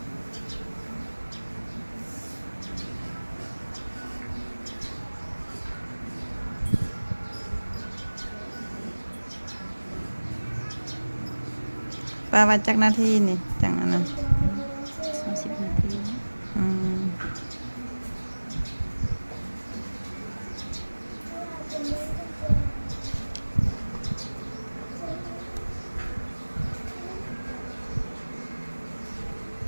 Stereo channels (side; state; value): both; inverted; correlation -1.00